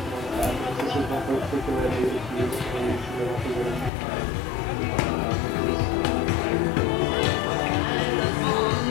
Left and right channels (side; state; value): right; drops out; at 3.9 s